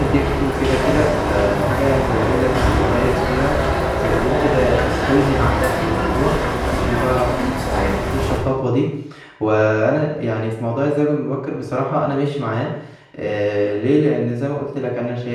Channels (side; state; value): both; identical; correlation 1.00